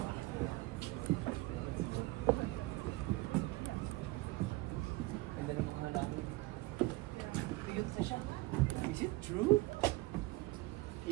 Is it true?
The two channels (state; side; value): quieter; left; 21.4 dB